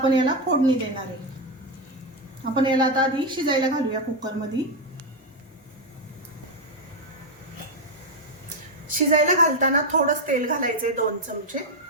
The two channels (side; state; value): both; normal; correlation 0.06